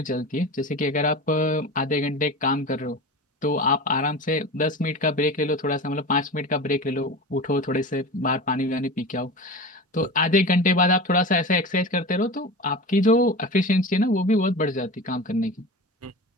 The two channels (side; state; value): both; normal; correlation 0.30